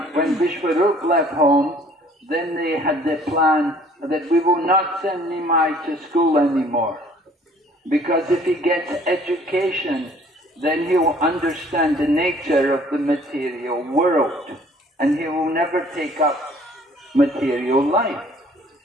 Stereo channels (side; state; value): both; normal; correlation 0.56